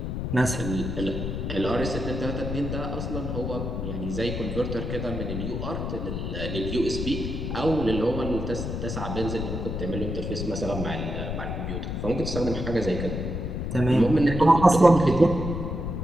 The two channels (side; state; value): left; noise; rumble, 4 dB below the sound